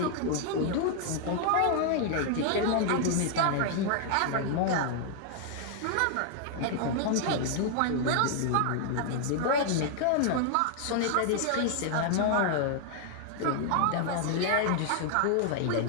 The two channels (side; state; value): both; different; correlation 0.00